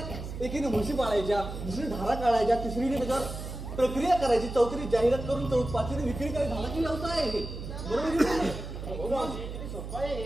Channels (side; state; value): right; noise; hum, 8 dB below the sound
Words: एकीने म्हशी पाळायच्या दुसरी धारा काढायच्या तिसरीने त्याच्यावर प्रक्रिया करायची चौथीने जाहिरात करून पाचवीने विक्री करायची झाला की व्यवसाय आहे बरोबर